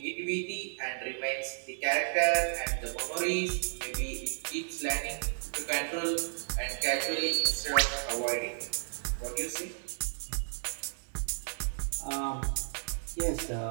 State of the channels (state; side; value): silent; left; 56 dB below the other